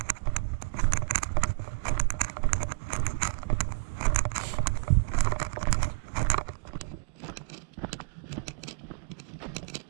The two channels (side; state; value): left; quieter; 34.3 dB